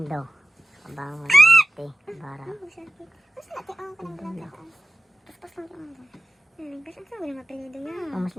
Abangon, bante, bara. Mas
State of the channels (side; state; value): both; normal; correlation 0.95